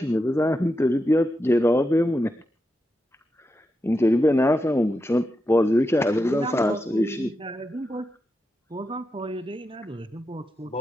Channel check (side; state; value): both; normal; correlation 0.87